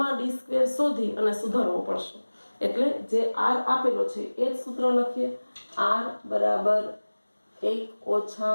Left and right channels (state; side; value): inverted; both; correlation -1.00